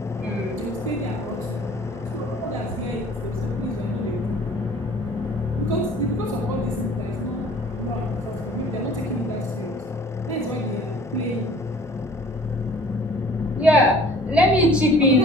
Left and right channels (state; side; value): normal; both; correlation 0.51